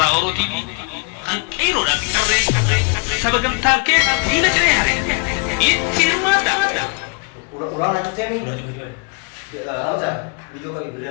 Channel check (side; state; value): right; quieter; 33.6 dB